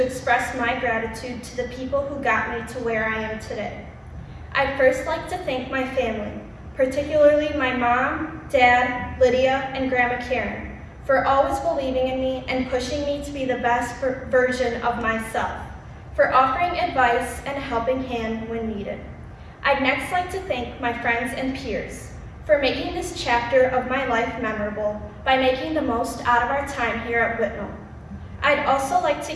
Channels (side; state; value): both; identical; correlation 1.00